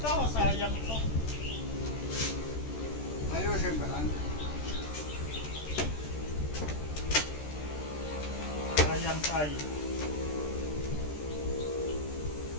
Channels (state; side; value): late; right; 13 ms